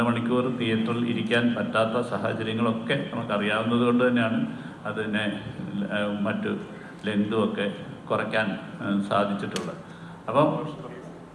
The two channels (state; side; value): identical; both; correlation 1.00